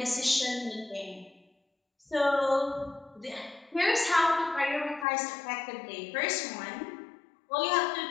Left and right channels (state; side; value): drops out; right; at 5.1 s